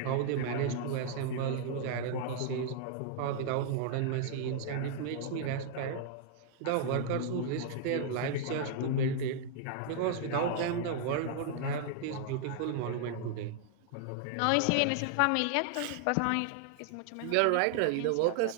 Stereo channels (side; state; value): both; different; correlation -0.01